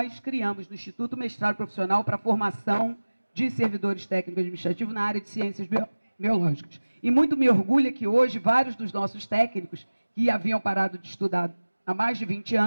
criamos no Instituto mestrado profissional para a formação de servidores técnicos administrativos na área de ciências biológicas. E muito me orgulha que hoje vários dos nossos técnicos, que haviam parado de estudar há mais de 20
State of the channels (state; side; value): inverted; both; correlation -1.00